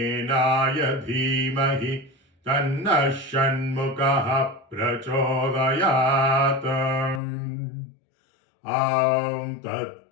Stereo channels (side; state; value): right; drops out; at 7.2 s